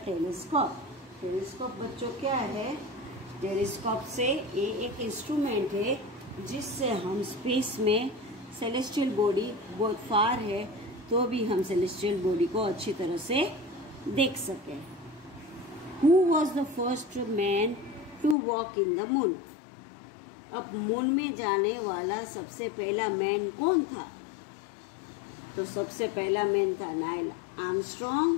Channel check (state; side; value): drops out; right; at 18.4 s